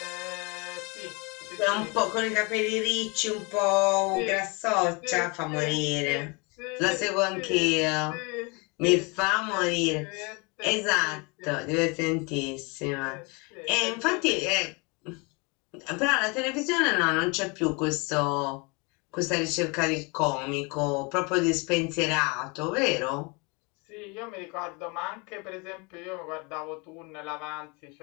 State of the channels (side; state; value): right; quieter; 29.6 dB